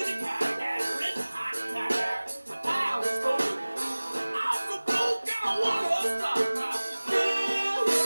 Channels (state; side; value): inverted; both; correlation -1.00